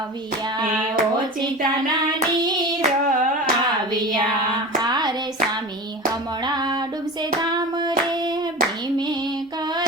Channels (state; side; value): normal; both; correlation 0.31